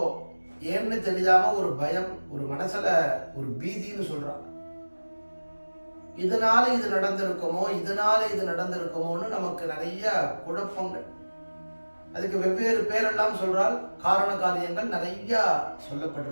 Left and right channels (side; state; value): both; inverted; correlation -1.00